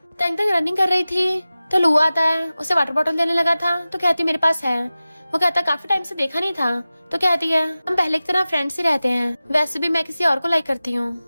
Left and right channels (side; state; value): both; inverted; correlation -0.96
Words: तंग तंग रनिंग कर रही थी तो लू आता है, उसे वाटर बॉटल देने लगा था तो कहती मेरे पास है। वो कहता काफी टाइम से देखा नहीं था। तो कहती है हम पहले की तरह फ्रेंड्स ही रहते हैं, वैसे भी मैं किसी और को लाइक करती